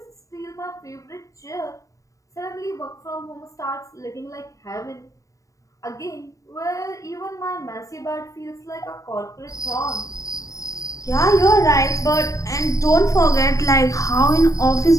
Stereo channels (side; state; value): right; late; 0.16 ms